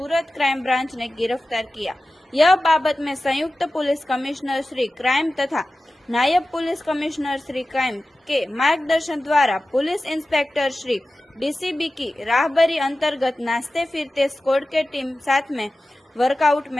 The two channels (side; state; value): both; normal; correlation 0.95